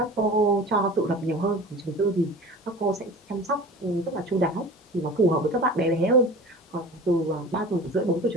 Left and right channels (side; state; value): both; normal; correlation 0.38